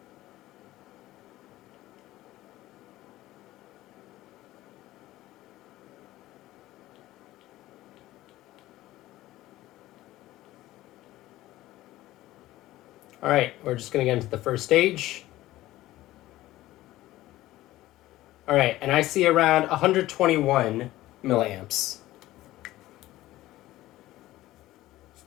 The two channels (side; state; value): right; quieter; 16.2 dB